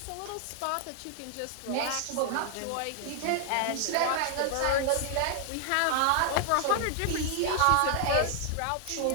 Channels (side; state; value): both; different; correlation 0.00